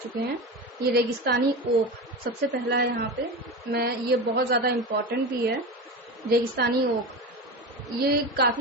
हैं। ये रेगिस्तानी ओक सबसे पहला है यहाँ पे। ये बहुत ज़्यादा इम्पोर्टेंट भी है। रेगिस्तानी ओक ये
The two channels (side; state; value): both; normal; correlation 0.24